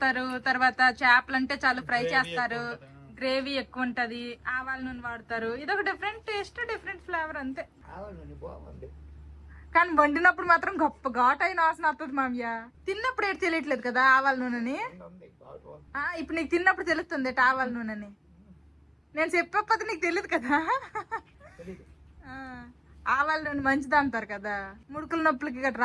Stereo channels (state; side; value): identical; both; correlation 1.00